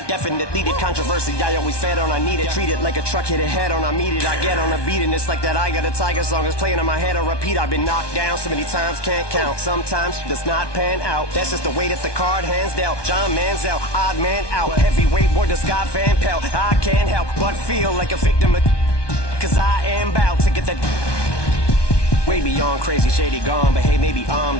definitely did. Controversy, I always fed on, I need it. Treat it like a truck hit a head on, I meet it. I get on a beat, and it's like that I Got a Tiger song is playing in my head. I repeat, I've been knocked down so many times, can't count. Sometimes it does not pan out. That's just the way that the card hands dealt. John Manziel, odd man out. Heavyweight boy, the Scott Van Pelt. I can't help but feel like a victim of, cause I am bout to get that way beyond crazy, shady, gone. But hey, maybe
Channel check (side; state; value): right; late; 1.2 ms